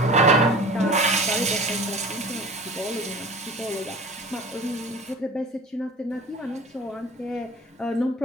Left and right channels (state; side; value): normal; both; correlation 0.40